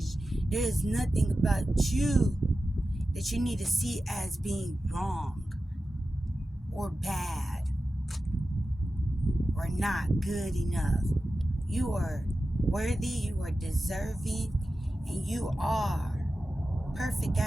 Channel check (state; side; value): normal; both; correlation 0.93